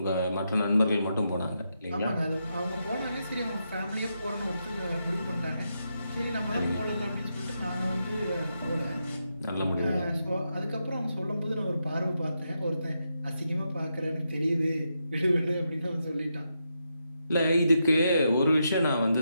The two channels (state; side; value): inverted; both; correlation -0.84